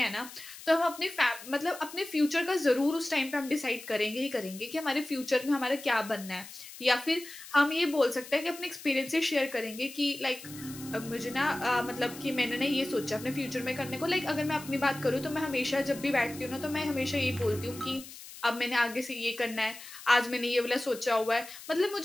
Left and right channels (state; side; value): noise; left; hiss, 15 dB below the sound